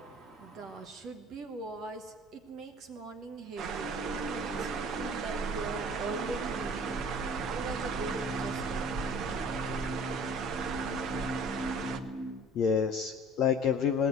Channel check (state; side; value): normal; both; correlation 0.46